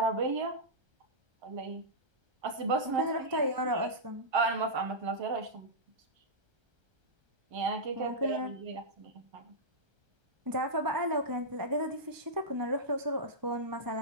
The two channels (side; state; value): left; late; 1.3 ms